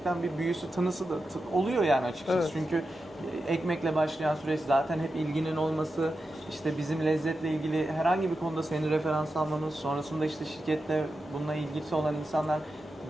bir büyüsü, tınısı da oluyor yani açıkçası. Evet. Çünkü ekmekle başlayan süreç zaten hep ilginin olması, işte bizim lezzetle ilgili herhangi bir konuda seni referans almamız, sonrasında işte şirketle bununla ilgisi olan insanlar,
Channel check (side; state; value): both; normal; correlation 0.90